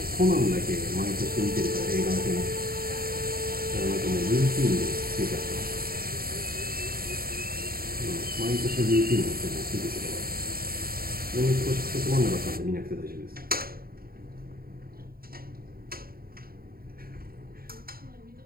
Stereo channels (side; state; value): left; late; 0.43 ms